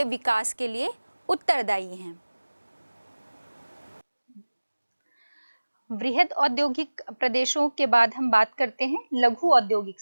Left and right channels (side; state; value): both; inverted; correlation -1.00